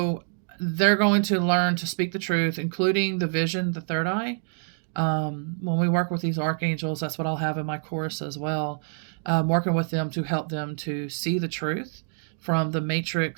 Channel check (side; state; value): left; silent; 61 dB below the other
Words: they're going to learn to speak the truth, including the vision, the third eye. When we work with these archangels, that's what I'll have in my course as well. Working with them to help them to see the truth from the